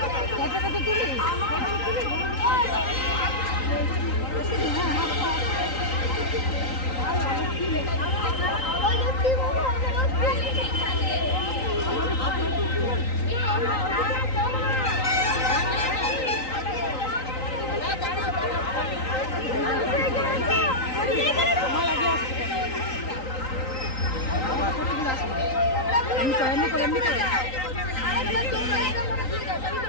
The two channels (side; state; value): right; late; 3.9 ms